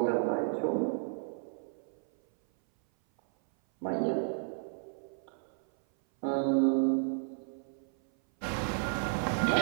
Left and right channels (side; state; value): left; silent; 56 dB below the other